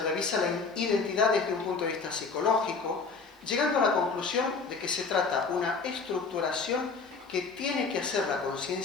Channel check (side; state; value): right; quieter; 4.6 dB